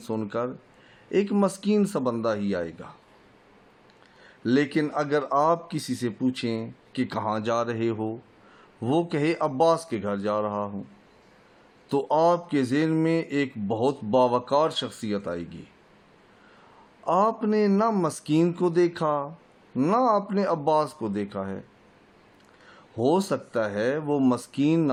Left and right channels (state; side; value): identical; both; correlation 1.00